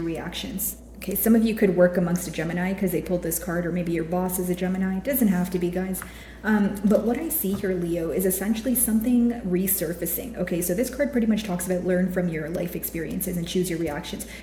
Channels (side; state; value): both; identical; correlation 1.00